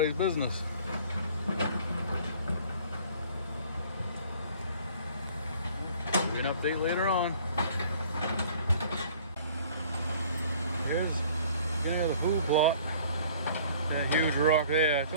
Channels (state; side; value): inverted; both; correlation -0.53